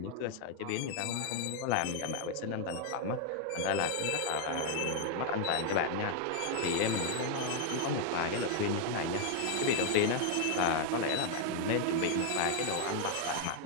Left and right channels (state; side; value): different; both; correlation 0.00